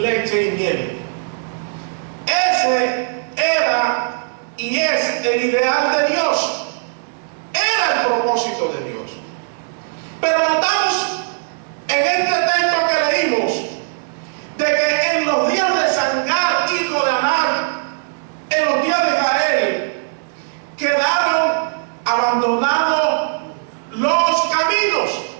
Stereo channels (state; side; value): silent; left; digital silence